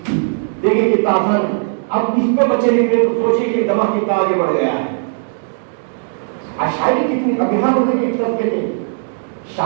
देखिए कितना आसान है। اب اس پہ بچے نکلے تو سوچیے کہ دماغ کتنا آگے بڑھ گیا ہے. شاعری کتنی ابھیان ہونے کے طبقے تھے.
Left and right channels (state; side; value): silent; left; digital silence